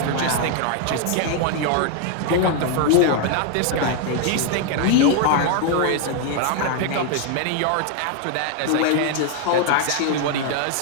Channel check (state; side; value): different; both; correlation 0.00